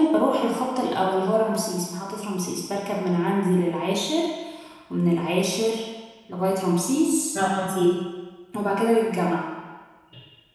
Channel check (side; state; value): both; identical; correlation 1.00